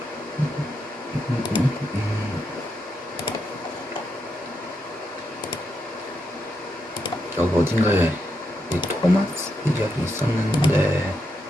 여기 어딘가에 이 토마스 이야기 있었는데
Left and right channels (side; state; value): both; normal; correlation 0.82